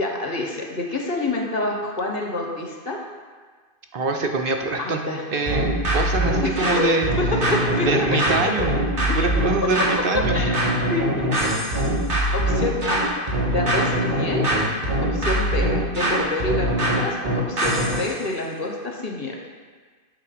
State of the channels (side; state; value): left; late; 2.5 ms